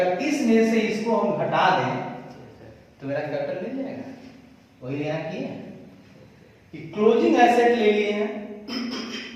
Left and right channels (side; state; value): both; identical; correlation 1.00